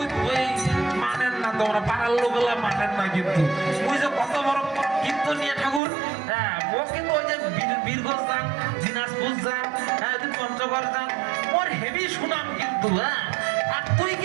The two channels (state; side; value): drops out; left; at 5.8 s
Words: মানেন না তোমরা পাড়ার লোকগুলা মানেন না কিন্তু ওই যে কত বড় কিন্তু নিয়ে ঠাকুর হ্যাঁ মোক কিন্তু ওই যে বীরগঞ্জ যান দিনাজপুর যান হ্যাঁ পঞ্চগড় যান মোর হেভি সুনাম কিন্তু হ্যাঁ আর তুই